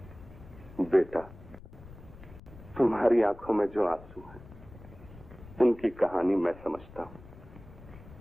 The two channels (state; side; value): noise; left; rumble, 18 dB below the sound